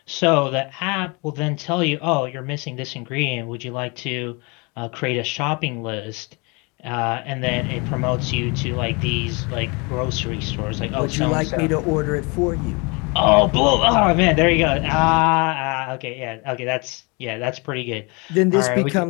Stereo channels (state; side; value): quieter; right; 29.4 dB